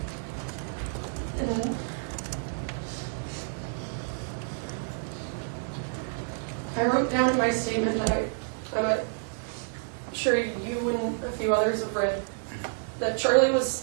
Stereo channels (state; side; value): silent; left; 58 dB below the other